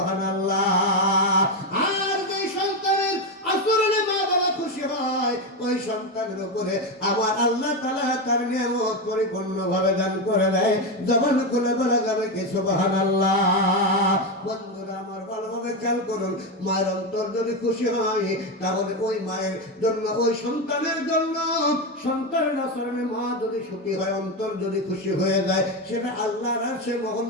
আর যে সন্তানের আচরণে মা বাবা খুশি হয়, ওই সন্তানের উপরে আমার আল্লাহ তাআলা তার নিয়ামত পরিপূর্ণভাবে দান করে দেয়। জবান খুলে বলা যাবে কি সুবহানাল্লাহ। বন্ধুরা আমার, ভালোভাবে খেয়াল করুন, মায়ের অন্তর যদি খুশি হয়, তাহলে ওই মায়ের জন্য, ওই সন্তানের জন্য, সন্তানের আচরণে মা যদি সুখী হয়, অন্তর যদি খুশি হয়ে যায়, সেটা আল্লাহর আরশে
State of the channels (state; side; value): normal; both; correlation 0.12